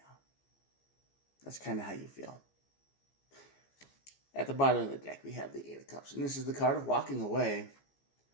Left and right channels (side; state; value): right; late; 15 ms